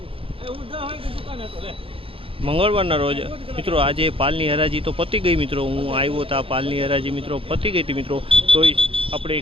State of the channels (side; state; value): left; late; 0.27 ms